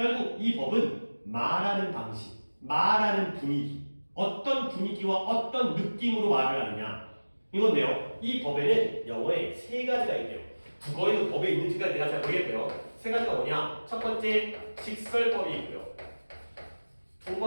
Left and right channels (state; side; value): inverted; both; correlation -1.00